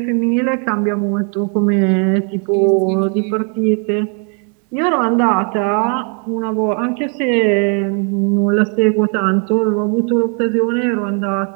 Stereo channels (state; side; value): quieter; left; 37.8 dB